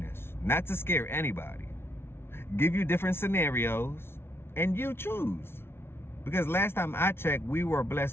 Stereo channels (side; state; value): right; late; 0.12 ms